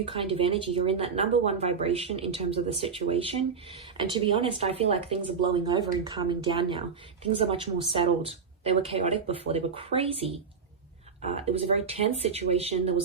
kind of energy. You're in that number one vibration in terms of the situation. And to be honest, I feel like things are blowing over and calming down now. Things are much more settled. They were chaotic before. They were crazy. It was a very tense situation. There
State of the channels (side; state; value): left; quieter; 5.8 dB